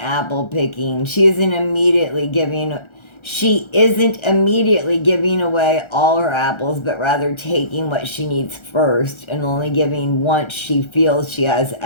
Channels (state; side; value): late; right; 1.3 ms